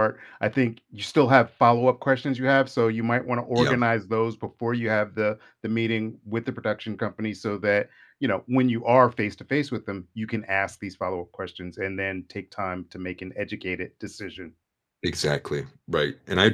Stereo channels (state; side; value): identical; both; correlation 1.00